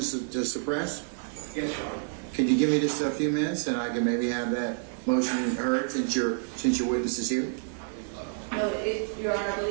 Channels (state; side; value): silent; left; digital silence